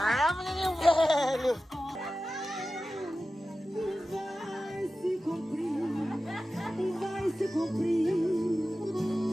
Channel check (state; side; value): normal; both; correlation 0.94